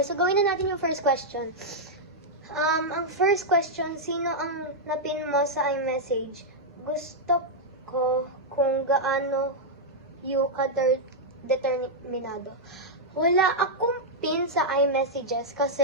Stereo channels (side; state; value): both; normal; correlation -0.05